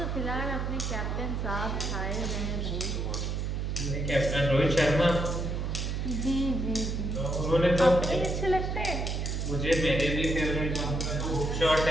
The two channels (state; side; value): noise; right; hum, 1 dB below the sound